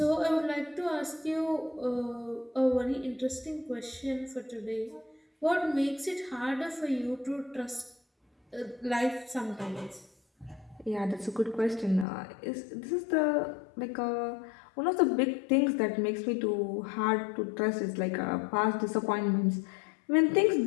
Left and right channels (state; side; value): drops out; right; at 12.1 s